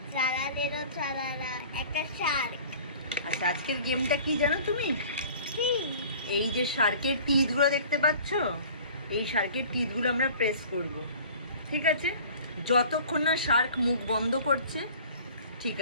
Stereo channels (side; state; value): both; inverted; correlation -0.46